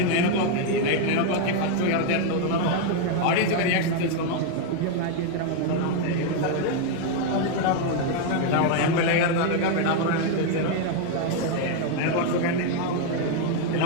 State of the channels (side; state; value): both; different; correlation 0.01